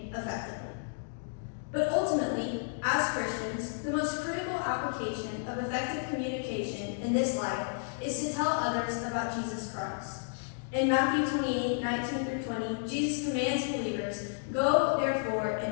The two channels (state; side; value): silent; right; digital silence